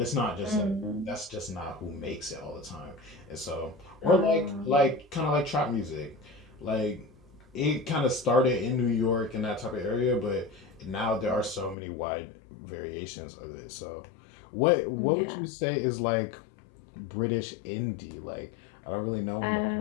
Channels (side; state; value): right; drops out; at 11.8 s